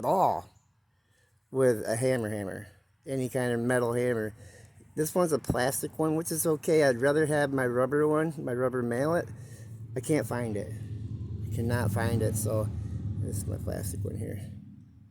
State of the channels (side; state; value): both; identical; correlation 1.00